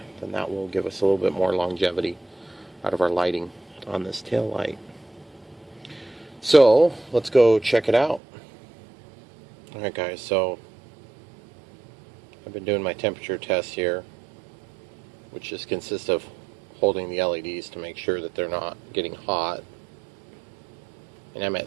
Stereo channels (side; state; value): left; drops out; at 8.2 s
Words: then that will give us a little bit more longevity out of our lighting on this tail light. So let's go check it out. Alright guys, so I've been doing my temperature test here, which just consists of holding the LEDs to make sure that they're not getting hot. And I'm